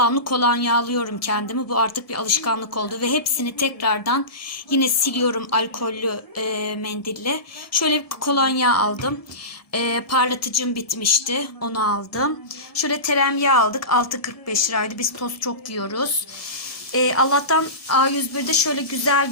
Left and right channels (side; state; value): right; late; 1.7 ms